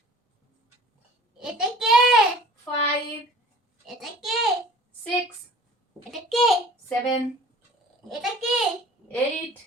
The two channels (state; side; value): normal; both; correlation 0.47